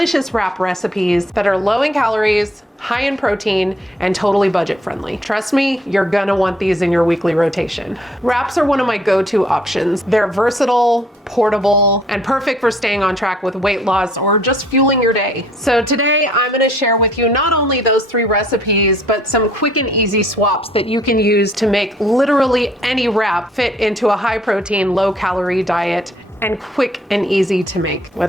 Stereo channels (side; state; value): both; normal; correlation 0.62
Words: wrap recipes that are low in calories, high in protein, and totally budget friendly. Trust me, you're gonna want these in your weekly rotation. Wraps are one of my go-to options. They're versatile, portable, and perfect for staying on track with weight loss or just fueling your day. So today I'm gonna share with you not only those 3 recipes, but some quick and easy swaps that you can use to make literally any wrap fit into a high protein, low calorie diet and quick and easy to make.